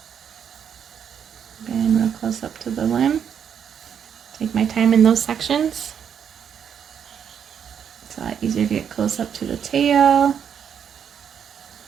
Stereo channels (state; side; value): quieter; left; 8.0 dB